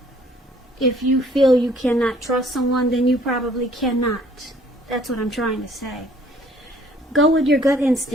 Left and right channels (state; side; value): normal; both; correlation 0.58